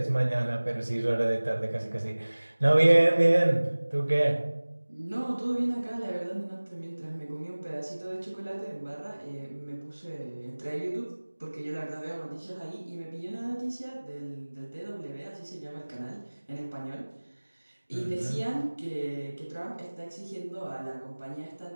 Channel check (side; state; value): both; inverted; correlation -1.00